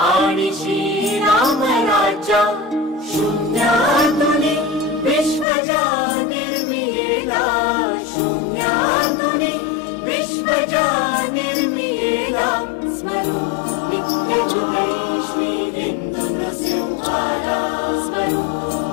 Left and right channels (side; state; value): right; drops out; at 5.5 s